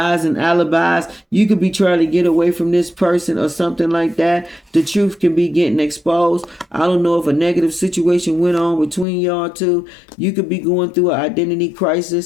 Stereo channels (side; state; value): right; drops out; at 9.1 s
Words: and alibis. You could be trying to get away from this person or something like that. The truth can be getting exposed. I don't know if a negative situation went on between y'all two. You could be going through an identity